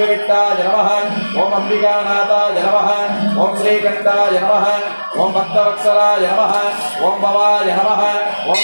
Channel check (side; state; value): both; inverted; correlation -1.00